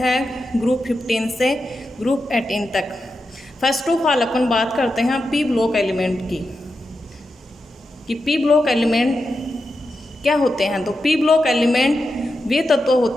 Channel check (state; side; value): normal; both; correlation 0.89